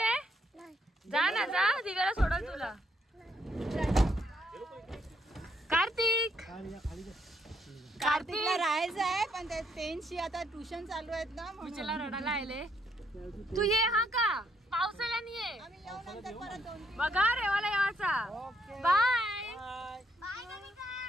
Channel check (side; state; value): both; normal; correlation 0.73